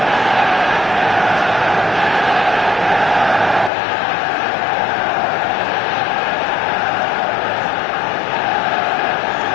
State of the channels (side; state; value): right; drops out; at 3.7 s